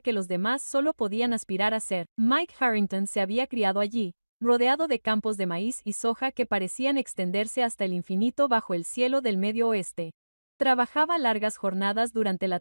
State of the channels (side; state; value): both; inverted; correlation -1.00